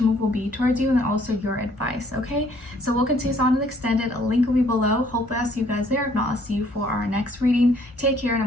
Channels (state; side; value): normal; both; correlation 0.63